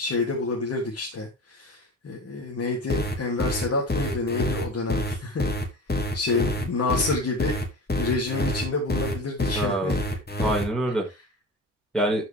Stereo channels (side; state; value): both; normal; correlation 0.33